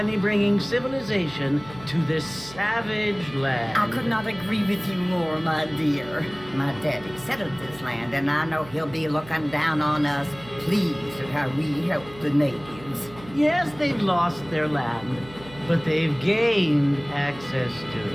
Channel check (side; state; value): right; noise; hum, 19 dB below the sound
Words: bringing civilization to this savage land. I could not agree with you more, my dear. My daddy settled this land, and I know he'll be looking down on us, pleased at how we help the natives. Yes, they've lost their land, but they've gained access to